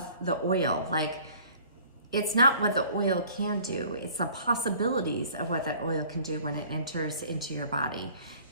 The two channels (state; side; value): inverted; both; correlation -0.51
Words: the oil. Like, it's not what the oil can do, it's the possibilities of what that oil can do when it enters into your body.